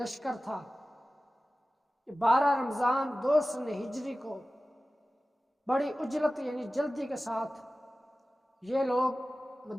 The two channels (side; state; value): both; normal; correlation 0.96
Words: تھا۔ 12 رمضان 2 سن ہجری کو بڑی اجلت یعنی جلدی کے ساتھ یہ لوگ